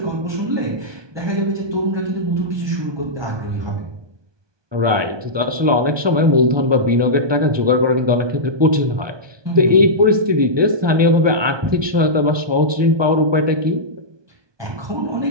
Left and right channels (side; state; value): left; late; 1.2 ms